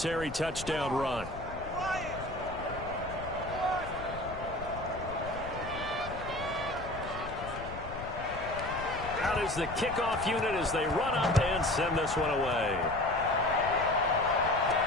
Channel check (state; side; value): noise; left; rumble, 11 dB below the sound